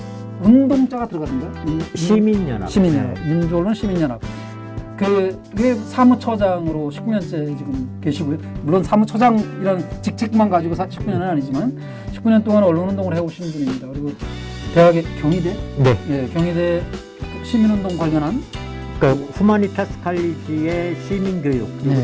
운동자가 들어가던가요? 시민연합. 시민연합. 네. 민주언론 시민연합. 그게 사무처장으로 19년째 지금 계시고요. 물론 사무처장이라는 직책만 가지고 19년은 아니지만 19년 동안 언론운동을 해오신 분입니다. 그리고 대학의 경희대, 네. 예, 경희대 시민운동 관련한 그러니까 후마니타스 칼리지의 시민교육, 그리고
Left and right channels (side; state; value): both; identical; correlation 1.00